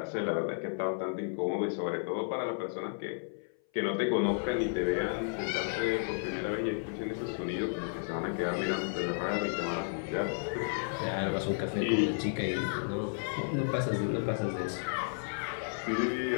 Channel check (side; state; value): right; silent; 56 dB below the other